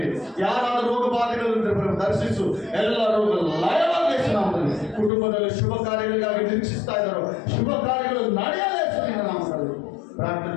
యారాలు రోగ బాధలు ఉంటే ప్రభు దర్శిస్తూ ಎಲ್ಲ రోగులు లయవాగేస్తున్నాము. కుటుంబంలో శుభకార్యాలుగా నిరీక్షిస్తారో శుభకార్యాలు ನಡೆಯಲೇಸುತ್ತಿನ ಪ್ರಾರ್ಥನೆ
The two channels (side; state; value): right; drops out; at 5.1 s